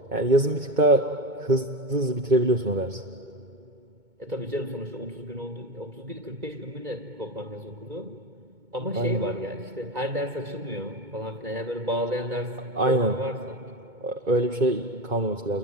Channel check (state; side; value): late; left; 2.2 ms